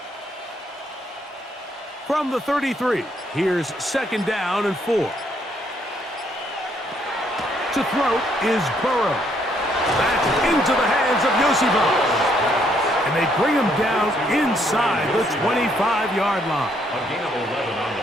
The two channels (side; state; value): both; normal; correlation 0.70